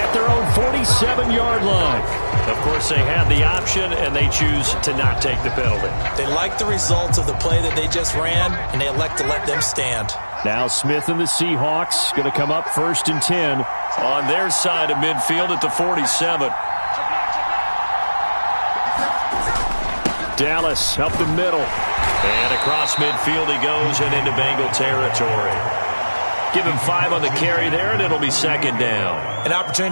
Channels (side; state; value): both; inverted; correlation -1.00